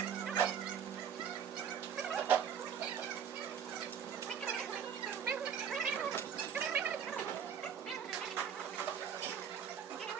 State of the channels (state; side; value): quieter; left; 7.8 dB